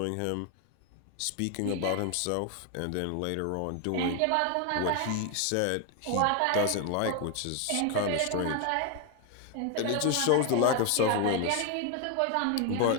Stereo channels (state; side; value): different; both; correlation 0.01